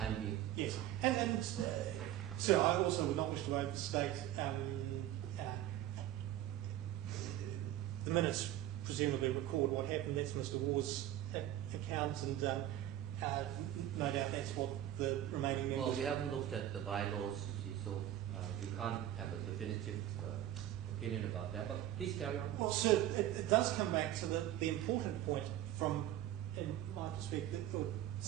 being. Yes, and sir, I also would not wish to overstate the minutes. Presumably record what happened. That's Mr. Waugh's account, and no doubt that's what the remaining members. Well, we haven't looked at the bylaws, you see, so we can't have a definitive opinion about that. But please carry on. Well, sir, it does come back to the important point from, in my perspective, or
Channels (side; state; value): left; quieter; 12.8 dB